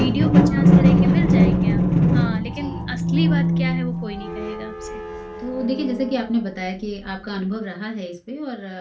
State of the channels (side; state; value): both; identical; correlation 1.00